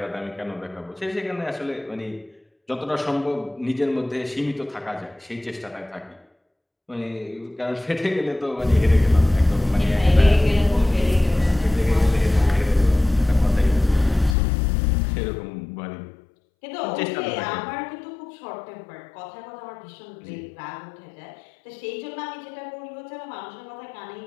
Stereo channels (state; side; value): drops out; right; at 14.4 s